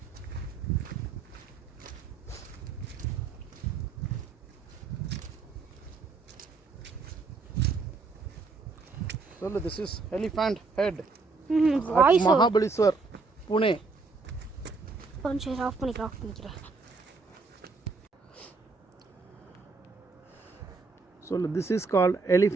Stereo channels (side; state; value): left; quieter; 4.2 dB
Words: சொல்லு. This is elephant head Mahabaleshwar Pune. கொஞ்சம் ஆஃப் பண்ணிக்கிறேன். சொல்லு. This is called